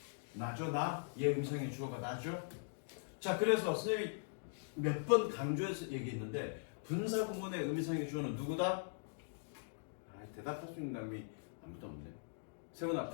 나죠, 나? 얘 음성의 주어가 나죠? 자, 그래서 선생님이 몇 번 강조해서 얘기했는데 분사구문의 음성의 주어는 누구다? 대답할 수 있는 사람이 아무도 없네. 세훈아,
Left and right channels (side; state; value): right; silent; digital silence